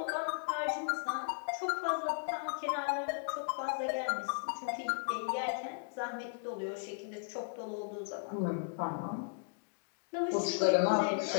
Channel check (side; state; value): right; silent; digital silence